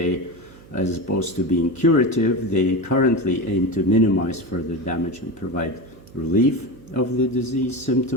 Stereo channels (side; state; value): right; noise; hum, 22 dB below the sound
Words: as opposed to being curative, they currently aim to minimize further damage and provide relief of the disease